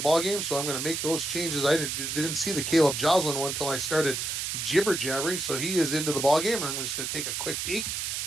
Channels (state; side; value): noise; right; hiss, 2 dB below the sound